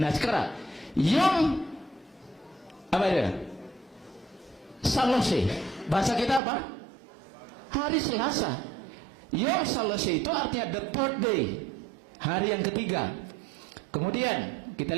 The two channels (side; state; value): left; drops out; at 6.4 s